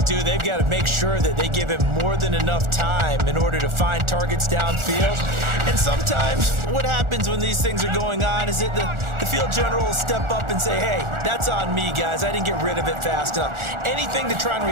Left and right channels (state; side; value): late; left; 1.4 ms